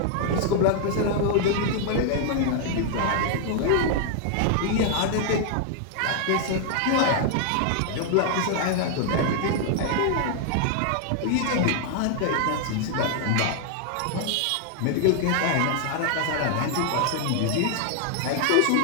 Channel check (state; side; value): different; both; correlation 0.00